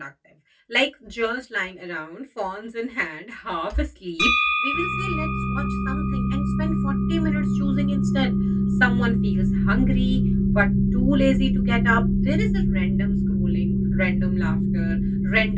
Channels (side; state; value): both; identical; correlation 1.00